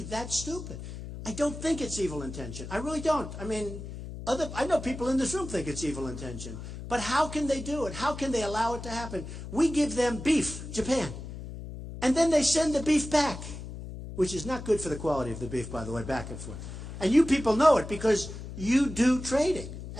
that stupid? I don't think it's evil intention. I really don't. I mean, I know people in this room think it's evil intention. But how can they do it? How can they allow it to happen? We give them beef, Japan. And then they send the beef back, which is not good for the quality of the beef, by the way, back and forth. And you people know it because you do trading.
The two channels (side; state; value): left; noise; hum, 10 dB below the sound